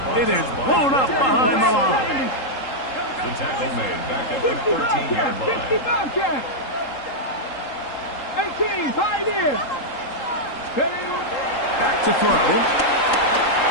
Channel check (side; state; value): right; late; 3.8 ms